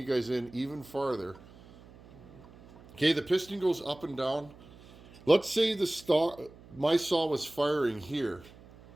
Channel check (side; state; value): right; noise; hum, 22 dB below the sound